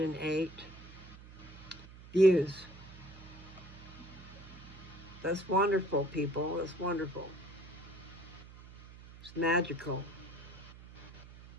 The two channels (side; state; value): right; noise; hum, 17 dB below the sound